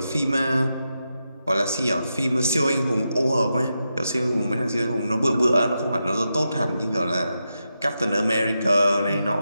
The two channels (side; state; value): both; inverted; correlation -0.87